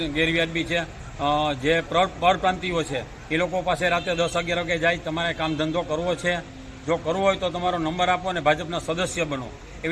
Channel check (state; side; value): identical; both; correlation 1.00